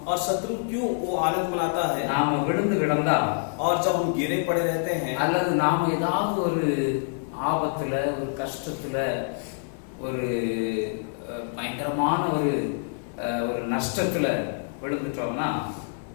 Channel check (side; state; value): right; silent; digital silence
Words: और शत्रु क्यों वो आनंद मनाता है? நாம விழுந்து கிடந்தா, और जब हम गिरे पड़े रहते हैं, அல்லது நாம ஏதாவது ஒரு ஆபத்துல, ஒரு கஷ்டத்துல, ஒரு பயங்கரமான ஒரு நஷ்டத்துல விழுந்துட்டோம்னா